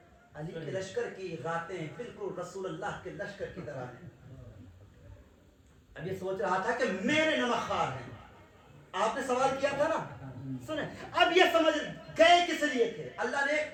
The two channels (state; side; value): identical; both; correlation 1.00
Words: علی کے لشکر کی راتیں بالکل رسول اللہ کے لشکر کی طرح ہیں. اب یہ سوچ رہا تھا کہ میرے نمک خوار ہیں. آپ نے سوال کیا تھا نا, سنیں, اب یہ سمجھ گئے کس لیے تھے. اللہ نے